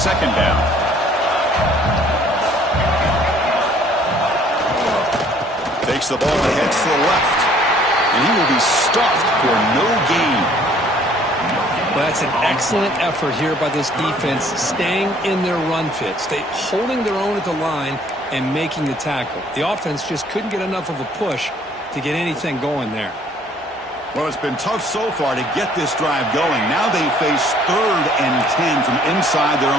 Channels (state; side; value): normal; both; correlation 0.58